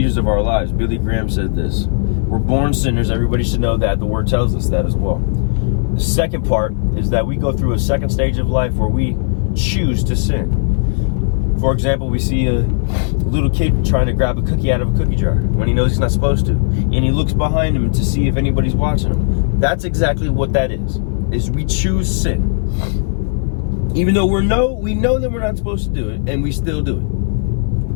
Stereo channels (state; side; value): silent; right; 58 dB below the other